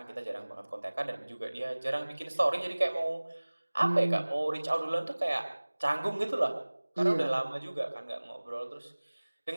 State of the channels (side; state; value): both; inverted; correlation -1.00